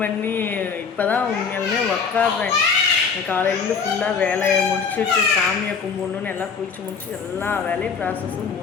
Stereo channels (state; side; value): quieter; right; 5.8 dB